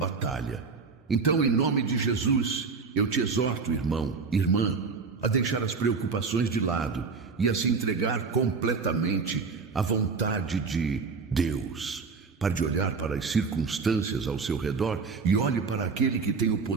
Então, em nome de Jesus, eu te exorto, irmão, irmã, a deixar as preocupações de lado e a se entregar completamente à vontade de Deus. Pare de olhar para as circunstâncias ao seu redor e olhe para aquele que tem o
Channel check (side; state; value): left; quieter; 4.8 dB